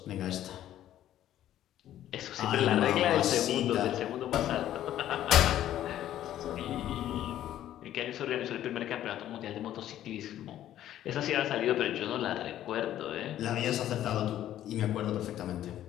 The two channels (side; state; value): right; quieter; 12.2 dB